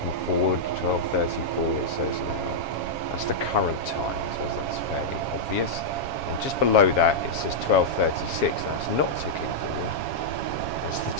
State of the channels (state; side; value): late; right; 7.3 ms